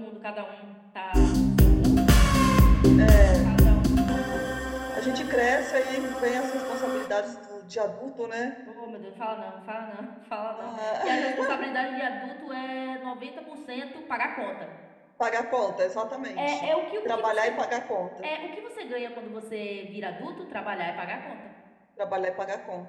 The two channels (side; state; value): both; identical; correlation 1.00